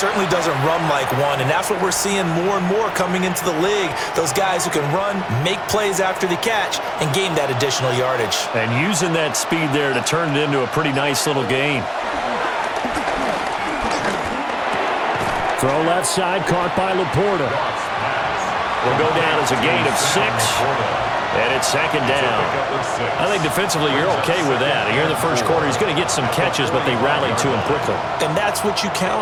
doesn't run like one, and that's what we're seeing more and more coming into the league. Those guys who can run, make plays after the catch, and gain that additional yardage. And using that speed there to turn it into a pretty nice little gain. Throw left side, caught by Laporta. Will go down as a gain of 6. And it's second down. I think defensively you're okay with that. Here in the first quarter, he's going to get some catches, but they rallied to him quickly. And that's what you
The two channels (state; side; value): identical; both; correlation 1.00